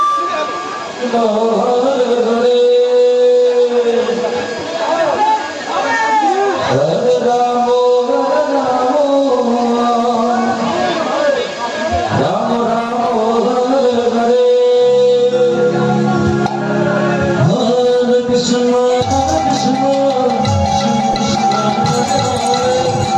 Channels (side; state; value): both; identical; correlation 1.00